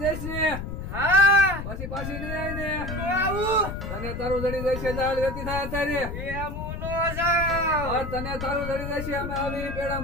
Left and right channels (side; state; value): left; noise; rumble, 6 dB below the sound